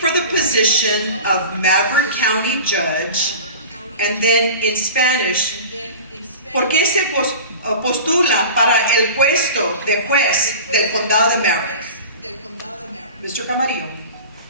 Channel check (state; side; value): inverted; both; correlation -0.36